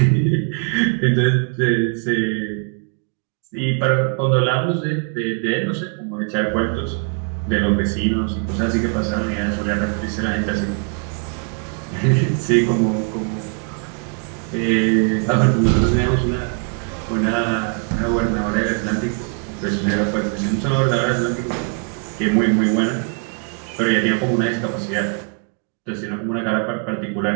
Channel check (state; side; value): quieter; left; 38.7 dB